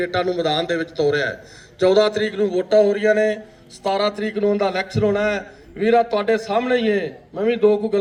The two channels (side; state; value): both; identical; correlation 1.00